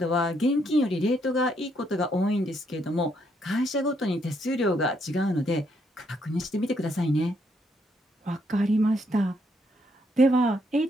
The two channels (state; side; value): normal; both; correlation 0.74